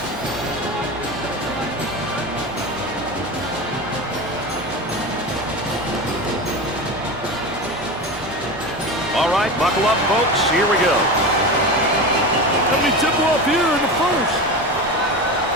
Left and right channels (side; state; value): both; normal; correlation 0.25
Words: All right, buckle up, folks. Here we go. Let me tip off here in the first.